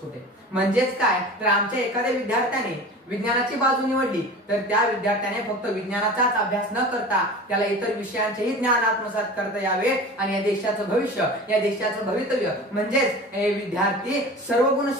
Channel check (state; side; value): normal; both; correlation 0.36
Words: म्हणजेच काय तर आमच्या एखाद्या विद्यार्थ्याने विज्ञानाची बाजू निवडली तर त्या विद्यार्थ्याने फक्त विज्ञानाचाच अभ्यास न करता त्याला इतर विषयांचेही ज्ञान आत्मसात करता यावे आणि या देशाचं भविष्य, या देशाचं भवितव्य म्हणजेच विद्यार्थी सर्व गुण